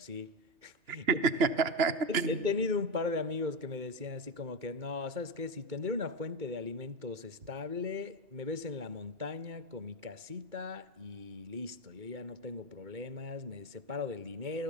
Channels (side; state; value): left; late; 2.9 ms